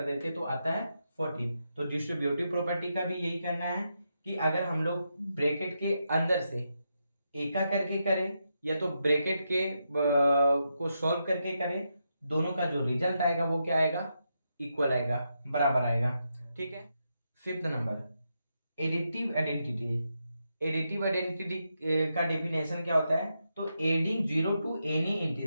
देते हैं तो आता है 14। तो डिस्ट्रीब्यूटिव प्रॉपर्टी का भी यही करना है कि अगर हम लोग ब्रैकेट के अंदर से एका करके करें या तो ब्रैकेट के को सॉल्व करके करें, दोनों का जो रिजल्ट आएगा वो क्या आएगा, इक्वल आएगा, बराबर आएगा। ठीक है, fifth number additive identity. Additive identity का डेफिनेशन क्या होता है, तो adding zero to any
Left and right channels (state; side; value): inverted; both; correlation -0.84